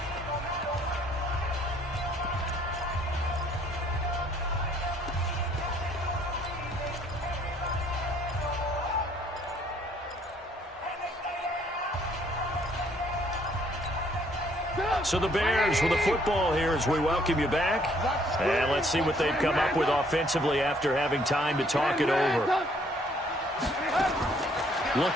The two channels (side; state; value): both; normal; correlation 0.64